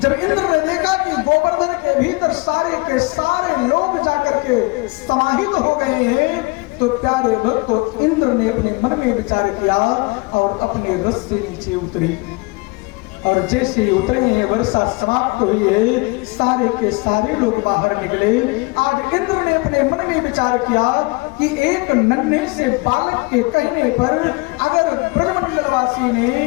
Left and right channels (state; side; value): quieter; right; 26.0 dB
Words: इंद्र ने देखा कि गोवर्धन के भीतर सारे के सारे लोग जाकर के समाहित हो गए हैं तो प्यारे भक्तों, इंद्र ने अपने मन में विचार किया और अपने रथ से नीचे उतरी और जैसे ही उतरे हैं वर्षा समाप्त हुई है, सारे के सारे लोग बाहर निकले। आज इंद्र ने अपने मन में विचार किया कि एक नन्हे से बालक के कहने पर अगर ब्रजमंडलवासी ने